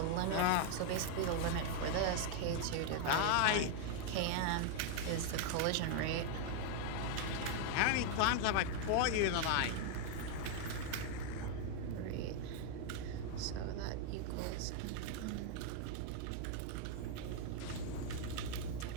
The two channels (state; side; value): different; both; correlation 0.00